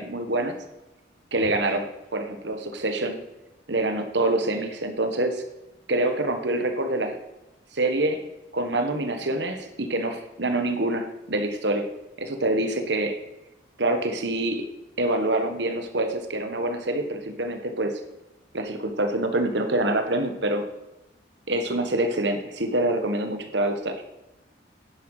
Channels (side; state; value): both; normal; correlation 0.02